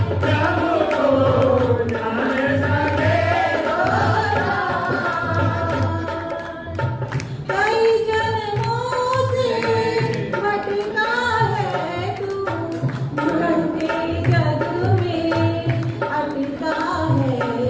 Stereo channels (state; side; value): identical; both; correlation 1.00